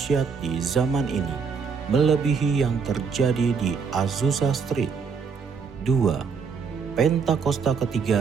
di zaman ini, melebihi yang terjadi di Azusa Street. 2. Pentakosta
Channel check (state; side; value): quieter; left; 5.8 dB